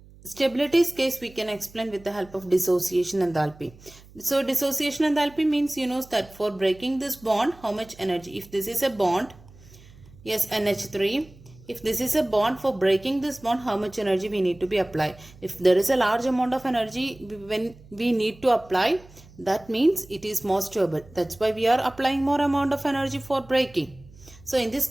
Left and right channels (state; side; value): noise; right; hum, 23 dB below the sound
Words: stability's case we can explain with the help of dissociation enthalpy. So dissociation enthalpy means you know that for breaking this bond, how much energy, if this is a bond, yes, NH3, if this is a bond, for breaking this bond, how much energy we need to be applied. If there is a large amount of energy when we need to apply, that means it is more stable. That's why we are applying more amount of energy for breaking. So in this